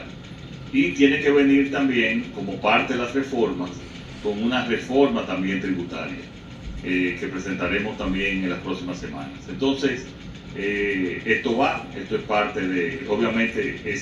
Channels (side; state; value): both; identical; correlation 1.00